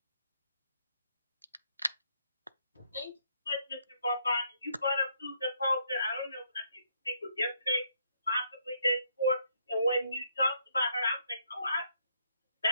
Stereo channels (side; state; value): both; inverted; correlation -0.73